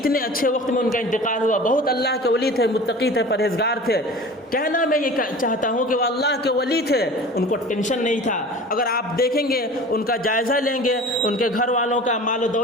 اچھے وقت میں ان کا انتقال ہوا، بہت اللہ کے ولی تھے، متقی تھے، پرہیزگار تھے۔ کہنا میں یہ چاہتا ہوں کہ وہ اللہ کے ولی تھے، ان کو ٹینشن نہیں تھا۔ اگر آپ دیکھیں گے، ان کا جائزہ لیں گے، ان کے گھر والوں کا مال و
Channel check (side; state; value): both; normal; correlation 0.39